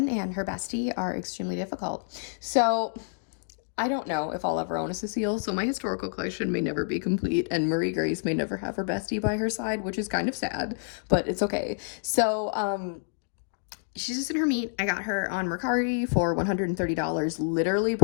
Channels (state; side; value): silent; right; digital silence